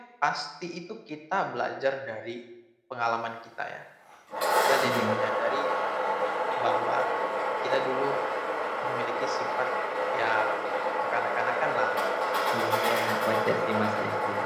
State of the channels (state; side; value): identical; both; correlation 1.00